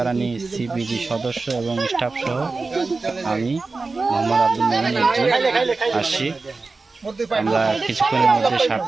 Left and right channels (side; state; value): left; quieter; 3.9 dB